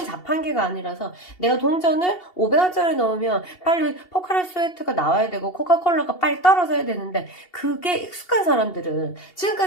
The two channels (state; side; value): late; right; 2.7 ms